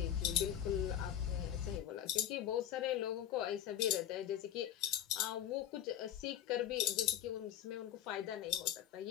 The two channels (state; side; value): quieter; right; 10.8 dB